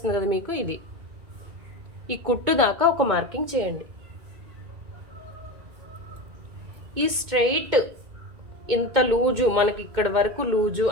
కదా మీకు, ఇది ఈ కుట్టు దాకా ఒక మార్కింగ్ చేయండి. ఈ స్ట్రైట్ ఇంత లూజు మనకి ఇక్కడ వరకు లూజు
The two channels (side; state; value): left; late; 2.2 ms